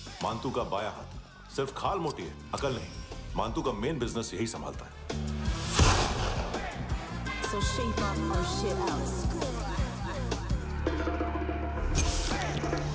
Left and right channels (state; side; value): identical; both; correlation 1.00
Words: मानतू का बाया हाथ। सिर्फ खाल मोटी है, अकल नहीं। मानतू का मेन बिजनेस यही संभालता है। So shape up our shit out.